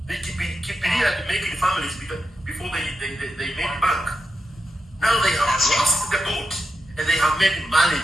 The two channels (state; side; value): normal; both; correlation 0.87